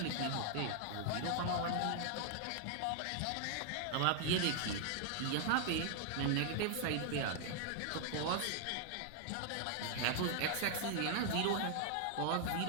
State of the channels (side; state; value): both; different; correlation 0.00